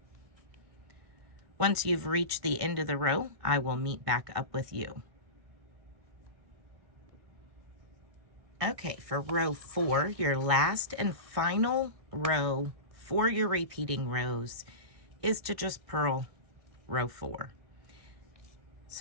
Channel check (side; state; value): left; late; 1.6 ms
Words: Once you've reached the end of the row, I will meet back up with you. Okay, for row 4, your last and final row for your repeating rows is to just purl row 4.